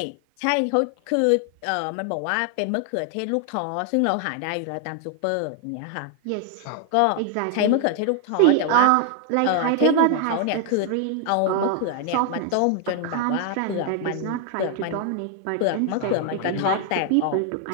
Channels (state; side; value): different; both; correlation 0.00